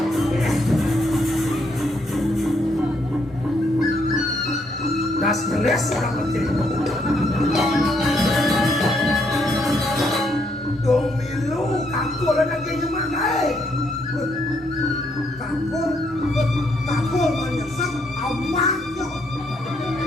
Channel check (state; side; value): normal; both; correlation 0.73